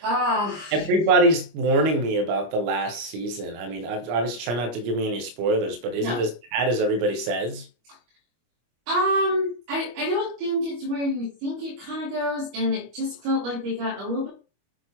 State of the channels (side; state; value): left; late; 25 ms